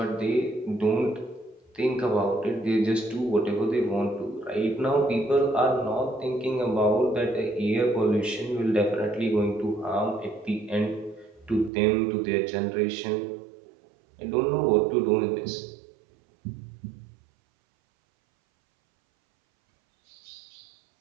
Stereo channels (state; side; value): drops out; left; at 11.7 s